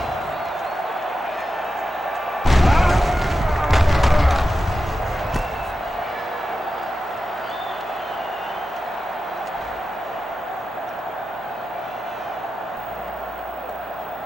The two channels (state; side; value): normal; both; correlation 0.91